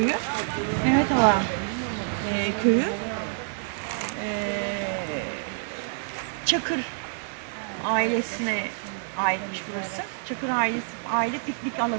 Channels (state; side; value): silent; left; 60 dB below the other